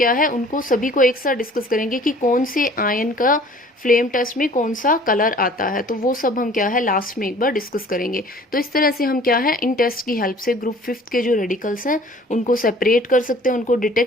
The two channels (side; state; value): both; normal; correlation 0.50